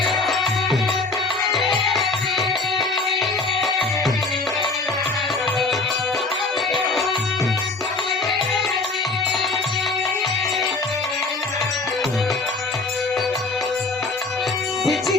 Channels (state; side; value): quieter; right; 3.6 dB